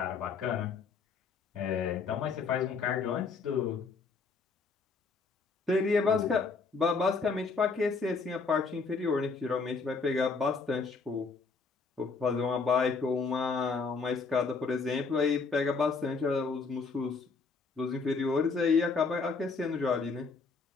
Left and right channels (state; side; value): quieter; right; 4.6 dB